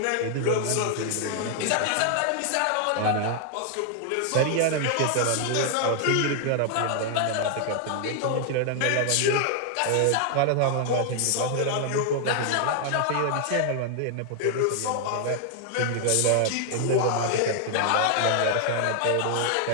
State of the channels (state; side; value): different; both; correlation 0.00